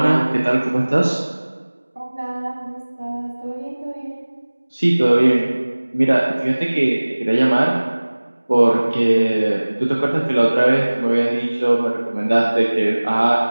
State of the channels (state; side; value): inverted; both; correlation -1.00